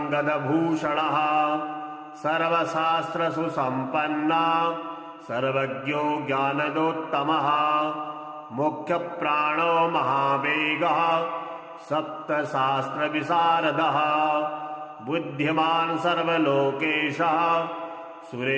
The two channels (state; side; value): identical; both; correlation 1.00